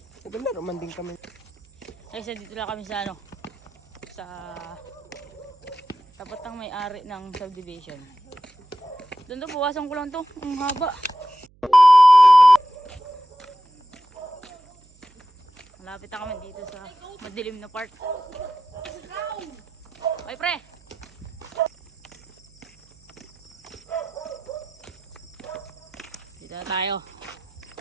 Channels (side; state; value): right; noise; hum, 30 dB below the sound